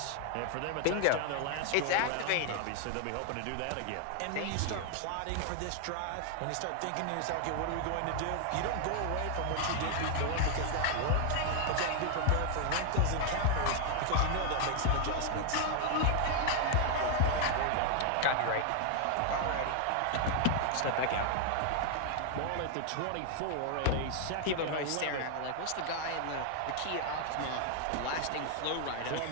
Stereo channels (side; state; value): both; different; correlation 0.00